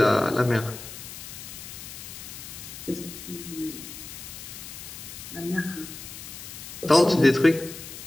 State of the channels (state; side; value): noise; left; hiss, 12 dB below the sound